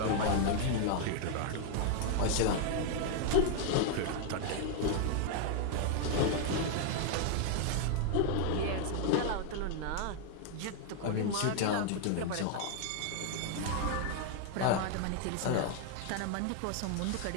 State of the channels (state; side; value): different; both; correlation 0.00